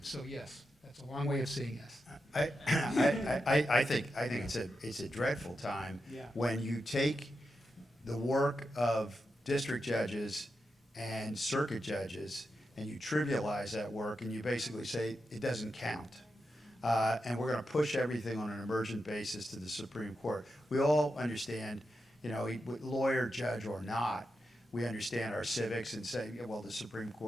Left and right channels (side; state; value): both; normal; correlation 0.88